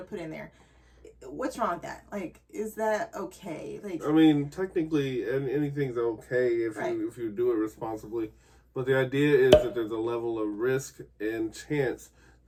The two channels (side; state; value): both; identical; correlation 1.00